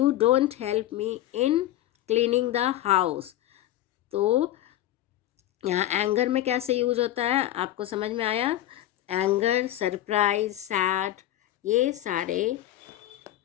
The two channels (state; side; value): quieter; right; 13.6 dB